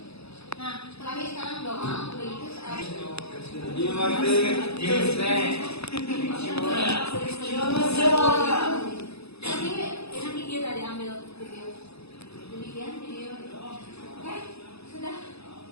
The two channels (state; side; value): late; right; 0.79 ms